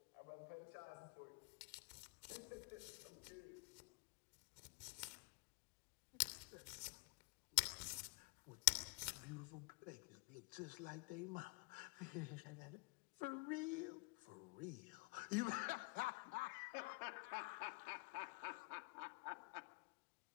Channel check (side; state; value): right; quieter; 30.1 dB